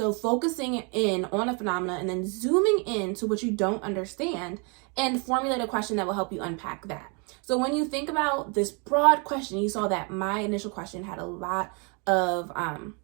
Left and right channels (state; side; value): quieter; left; 34.4 dB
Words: focusing in on a phenomena and then zooming in to what you don't understand and formulate a question that will help you unpack that. So when you think about this broad question, you saw that my initial question had a lot of,